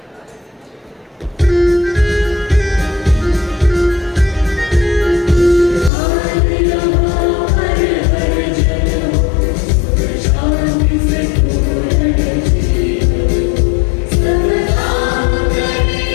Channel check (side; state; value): right; drops out; at 5.9 s